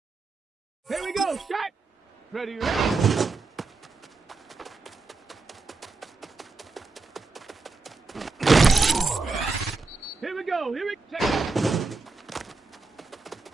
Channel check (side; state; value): left; quieter; 3.9 dB